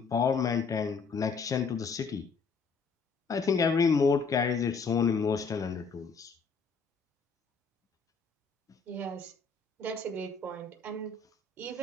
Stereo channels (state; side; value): quieter; right; 4.9 dB